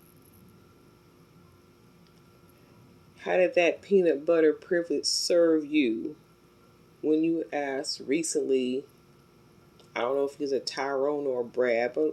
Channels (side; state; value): both; identical; correlation 1.00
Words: How did that peanut butter privilege serve you when you asked recently? I don't know if he's a Tyrone or a Brad,